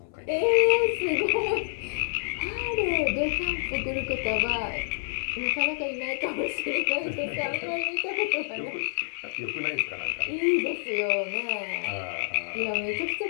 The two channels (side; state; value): right; silent; 59 dB below the other